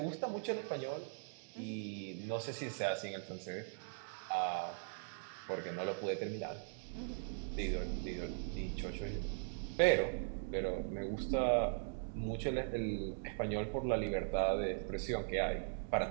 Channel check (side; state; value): left; silent; digital silence